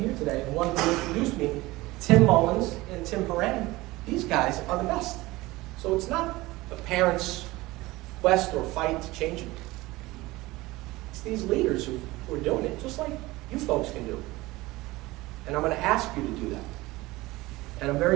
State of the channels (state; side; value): quieter; left; 19.9 dB